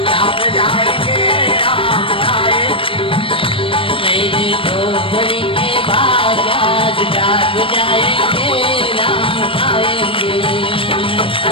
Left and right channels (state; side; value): late; right; 0.26 ms